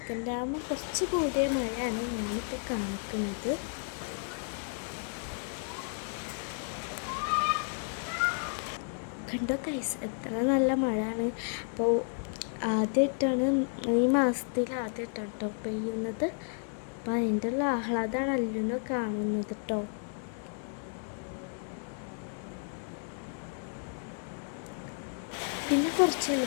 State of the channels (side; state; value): right; silent; 56 dB below the other